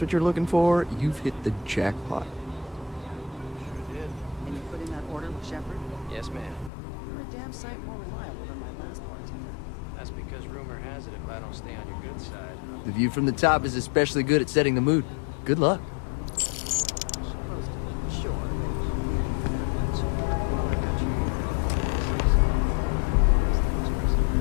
what you're looking for, you've hit the jackpot. Can you put in that order with Shepard? Yes, ma'am. You're a damn sight more reliable than my last bartender. That's because rumor has it if I don't stay on your good side. The view from the top is especially good at setting the mood. Good luck.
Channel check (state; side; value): drops out; right; at 6.7 s